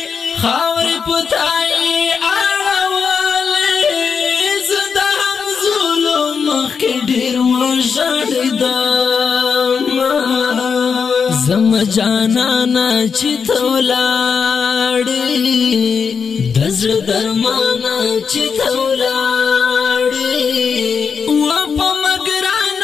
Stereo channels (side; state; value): right; quieter; 6.0 dB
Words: خاورې پتاي اړولې زدا هم ظلم مخکې ډېر وژړېدم زم جانانا چې ته ولاړې د زړه درمانا چې ته ولاړې و په